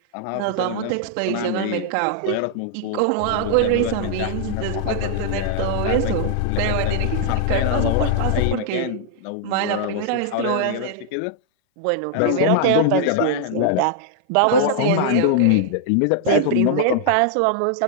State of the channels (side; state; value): both; different; correlation -0.01